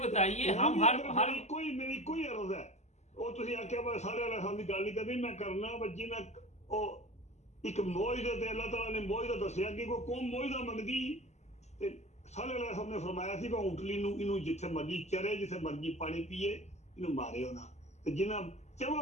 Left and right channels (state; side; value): late; right; 0.33 ms